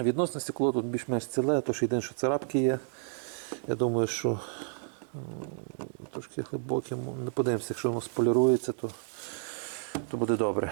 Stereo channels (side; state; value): left; silent; digital silence